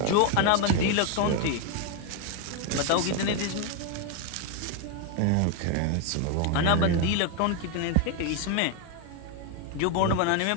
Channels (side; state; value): both; different; correlation 0.01